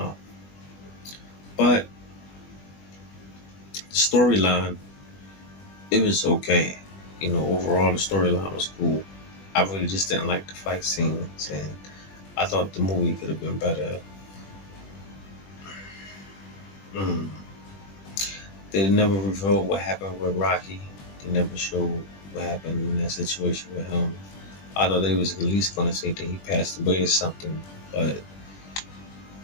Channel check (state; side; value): late; right; 21 ms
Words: But the storyline, it was okay. Overall the storyline was cool. I really just didn't like the fight scenes, and I thought the movie could have been better. Mm. They never revealed what happened with Rocky. They never showed what happened in that situation with him. I thought they was at least going to say that he passed away or something, but